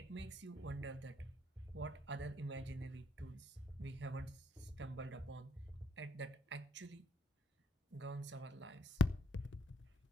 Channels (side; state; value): both; normal; correlation 0.71